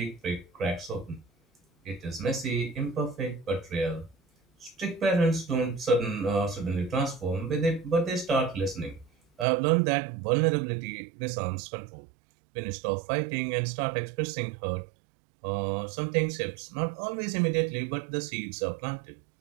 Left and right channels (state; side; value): drops out; left; at 9.5 s